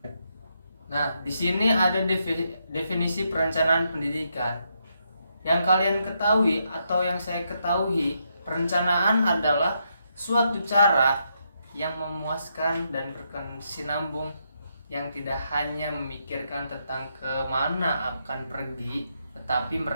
Nah, di sini ada definisi perencanaan pendidikan. Yang kalian ketahui atau yang saya ketahui, perencanaan adalah suatu cara yang memuaskan dan berkesinambung, yang tidak hanya memikirkan tentang kemana akan pergi, tetapi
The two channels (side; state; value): both; inverted; correlation -0.80